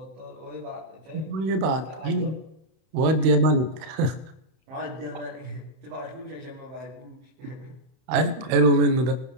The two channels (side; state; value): left; late; 31 ms